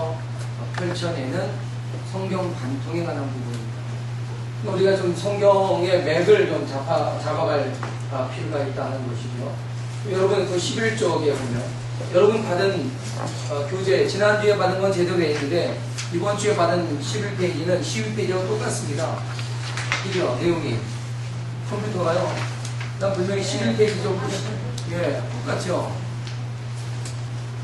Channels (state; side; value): identical; both; correlation 1.00